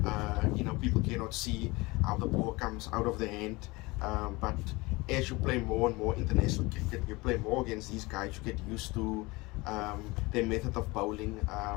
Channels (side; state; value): right; quieter; 23.2 dB